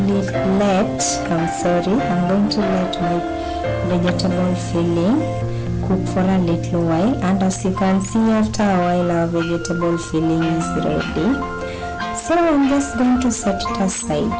my vegetable filling cook for a little while, and as you can see, after a while our vegetable filling is ready. So I'm just going to set it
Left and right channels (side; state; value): both; identical; correlation 1.00